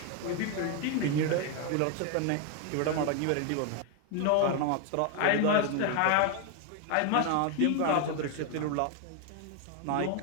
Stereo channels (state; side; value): different; both; correlation 0.01